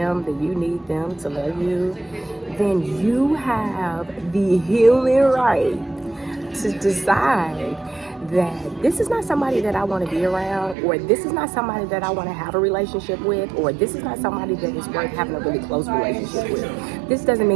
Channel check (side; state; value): left; drops out; at 10.8 s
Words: that you need them to love you, then you have the healing right to decide that this is not somebody that I want to be around, or this is not somebody that I want to have a relationship with, or this is not somebody that is worth having a really close relationship with. This doesn't